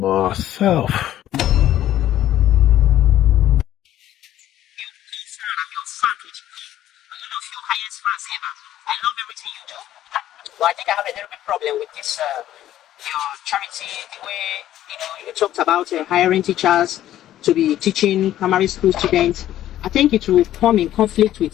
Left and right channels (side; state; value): right; quieter; 12.7 dB